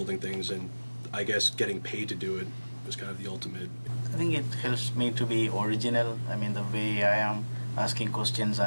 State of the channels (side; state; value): both; inverted; correlation -1.00